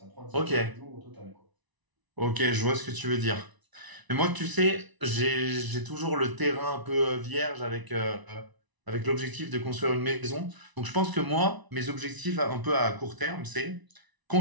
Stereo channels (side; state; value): left; late; 1.0 ms